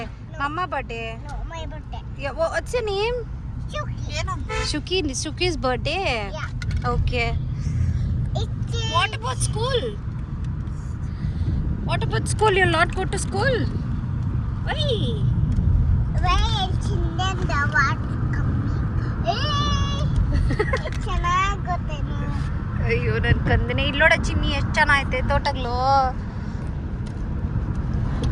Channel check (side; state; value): both; identical; correlation 1.00